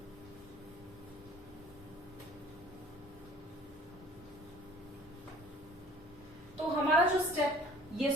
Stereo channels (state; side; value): normal; both; correlation 0.51